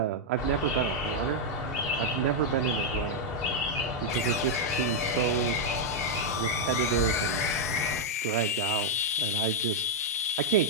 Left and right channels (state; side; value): normal; both; correlation -0.02